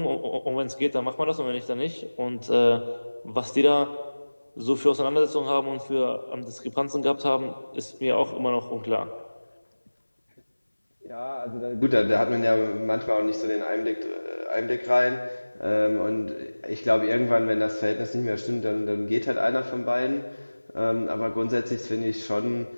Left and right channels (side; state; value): both; inverted; correlation -1.00